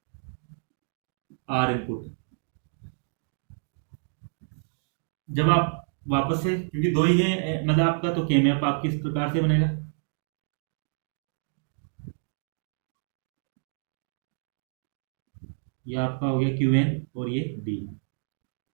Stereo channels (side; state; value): left; silent; digital silence